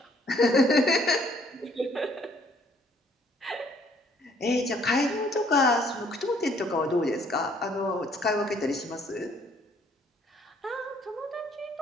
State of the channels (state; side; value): normal; both; correlation 0.63